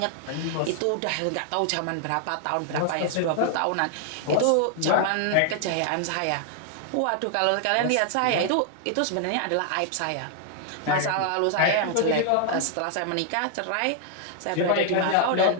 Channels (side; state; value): both; different; correlation 0.00